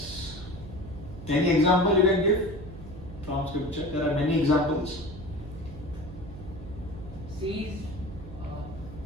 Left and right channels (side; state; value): right; noise; hum, 13 dB below the sound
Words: Any example you can give from scripture? There are many examples. Sees,